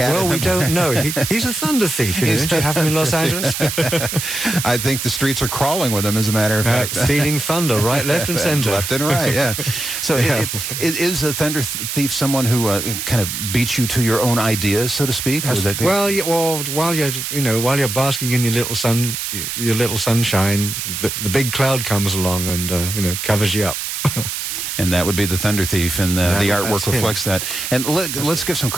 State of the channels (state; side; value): noise; right; hiss, 4 dB below the sound